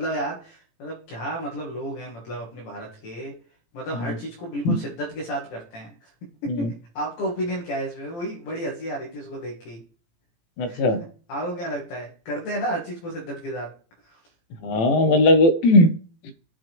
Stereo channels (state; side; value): late; right; 18 ms